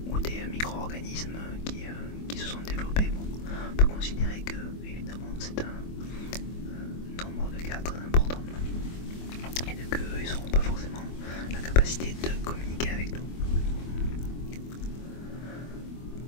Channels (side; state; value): right; late; 24 ms